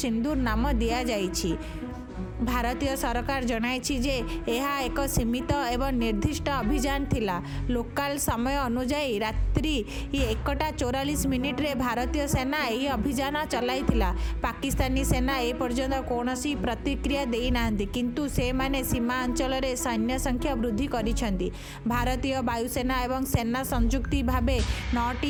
नाम दिया जाइछि। भारतीय सरकार जनाइछि जे यह एक सीमित एवं निर्दिष्ट अभियान थिला। लोकल समय अनुसार रात्रि 1:44 रे भारतीय सेना यही अभियान चलाइथिला। पाकिस्तानी सेना ए पर्यंत कौनसी प्रतिक्रिया देई नाहंती, किंतु से माने सीमा अंचल रे सैन्य संख्या वृद्धि करिसेंती। भारतीय वायुसेना एवं सेना संयुक्ति भावे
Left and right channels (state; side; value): identical; both; correlation 1.00